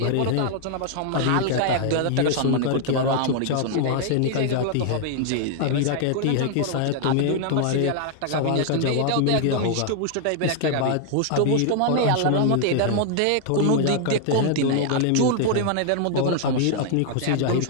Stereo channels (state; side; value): different; both; correlation 0.00